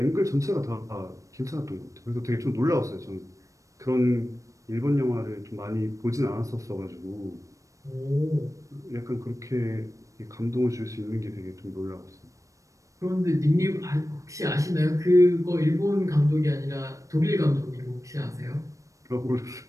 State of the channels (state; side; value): late; left; 0.16 ms